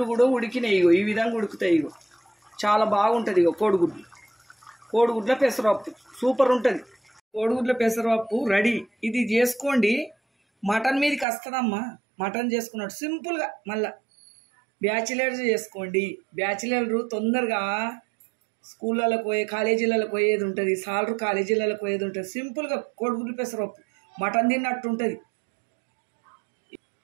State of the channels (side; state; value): left; drops out; at 11.2 s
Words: కూడా ఉడికినాయి. ఈ విధంగా ఉడుకుతాయి. చాలా బాగుంటుంది. కోడిగుడ్ల పెసరపప్పు సూపర్ ఉంటుంది. కోడిగుడ్ల పెసరపప్పు రెడీ. ఇది చేసుకోండి. మటన్ మీదకి వస్తుందమ్మా. మటన్ చేసుకున్నట్టు సింపుల్గా. మళ్ళీ బ్యాచిలర్స్ చేసుకోండి. బ్యాచిలర్లు తొందరగా స్కూళ్ళకు పోయే, కాలేజీలకు పోయేది ఉంటుంది. సాలరు కాలేజీలకు పోయేది ఉంటుంది. సింపుల్గా కోడిగుడ్లు పెసరపప్పు మటన్ తిన్నట్టు ఉంటుంది.